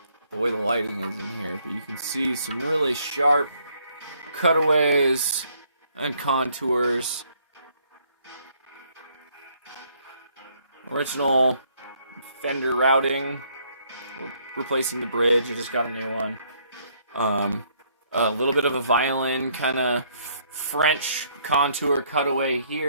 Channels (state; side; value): inverted; both; correlation -0.67